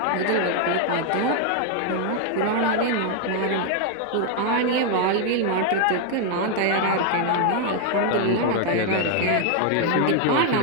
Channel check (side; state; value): both; different; correlation 0.00